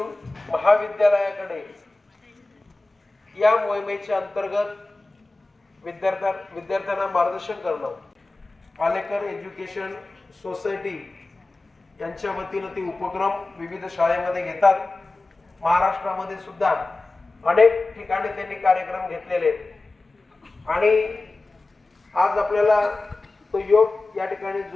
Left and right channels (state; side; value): quieter; right; 3.1 dB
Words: महाविद्यालयाकडे या मोहिमेच्या अंतर्गत विद्यार्थ्यांना मार्गदर्शन करणं, कालेकर एज्युकेशन सोसायटी यांच्या वतीनं ते उपक्रम विविध शाळेमध्ये घेतात. महाराष्ट्रामध्ये सुद्धा अनेक ठिकाणी त्यांनी कार्यक्रम घेतलेले आहेत आणि आज आपल्याला तो योग या ठिकाणी